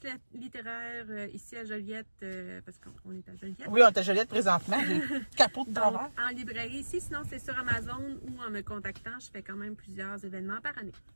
littéraire ici à Joliette, parce qu'on est à Joliette. Oui, on est à Joliette présentement. J'ai le capot de Donc, travers. en librairie ici, sinon c'est sur Amazon ou en me contactant, je fais quand même plusieurs événements par année.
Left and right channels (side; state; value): both; inverted; correlation -1.00